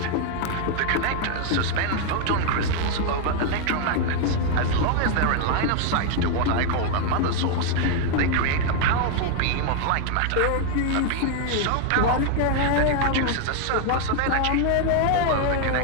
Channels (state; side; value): different; both; correlation 0.00